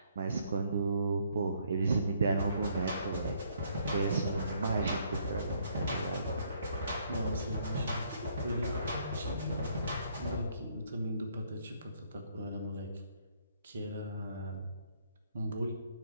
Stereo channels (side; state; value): both; inverted; correlation -0.67